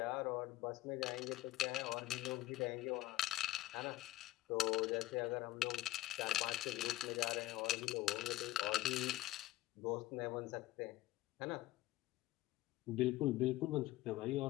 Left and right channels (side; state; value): right; quieter; 16.3 dB